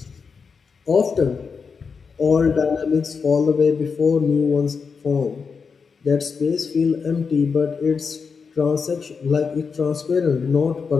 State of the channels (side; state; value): right; quieter; 5.5 dB